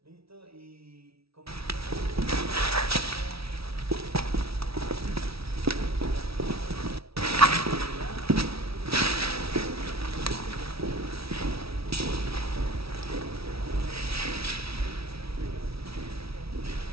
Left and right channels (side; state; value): left; late; 0.76 ms